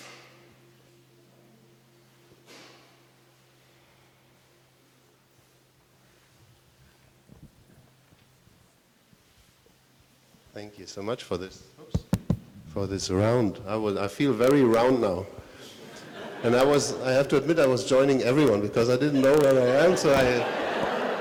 Thank you so much for this. For this round. I feel very round now. And I have to admit I was joining everyone because I didn't know where I am,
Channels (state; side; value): identical; both; correlation 1.00